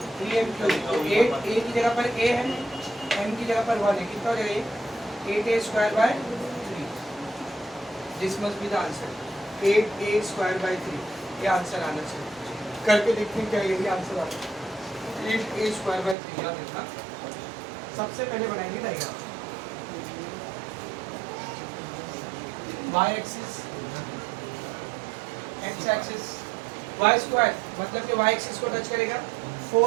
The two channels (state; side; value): drops out; left; at 16.2 s